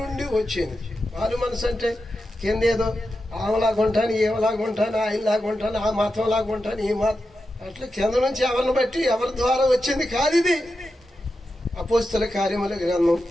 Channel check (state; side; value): normal; both; correlation 0.90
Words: నుండి వచ్చింది. వారి మనసు అంటే కింద ఏదో ఆమెలాగుంటాను, ఏమలాగుంటాను, ఆయనలాగుంటాను, ఆ మతం లాగుంటాను, ఈ మతం, అట్లా కింద నుంచి ఎవరిని బట్టి ఎవరి ద్వారా వచ్చింది కాదు ఇది. అపోస్తల కార్యముల గ్రంథం